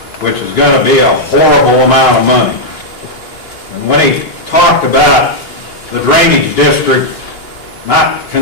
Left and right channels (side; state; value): right; late; 2.9 ms